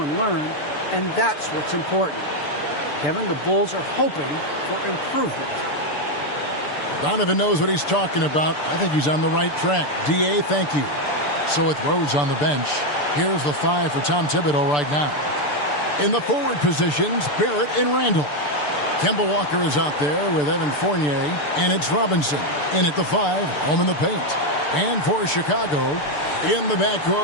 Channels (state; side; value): late; right; 6.8 ms